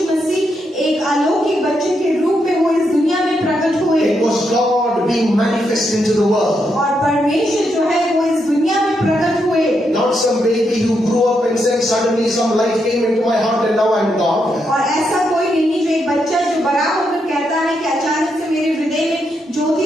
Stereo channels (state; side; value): normal; both; correlation 0.81